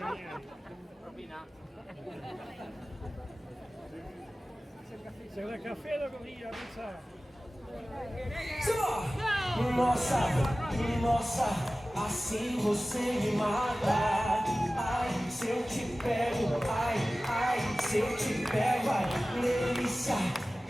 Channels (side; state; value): both; normal; correlation 0.97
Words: C'è una caffè da corrida, Nossa, nossa, assim você me mata. Ai, se eu te pego, ai, se eu te pego, ai, delícia,